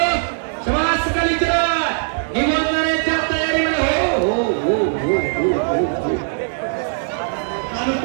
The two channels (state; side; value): silent; left; digital silence